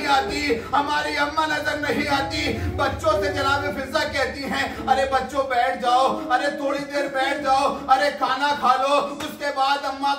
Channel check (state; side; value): identical; both; correlation 1.00